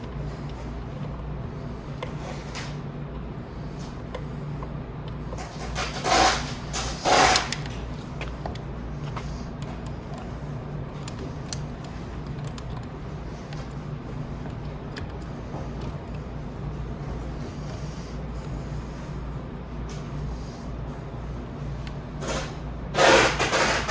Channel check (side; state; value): both; identical; correlation 1.00